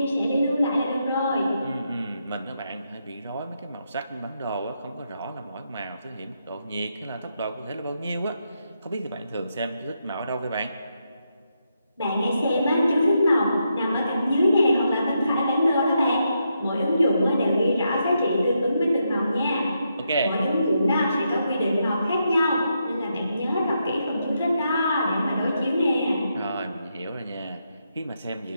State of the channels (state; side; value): inverted; both; correlation -0.82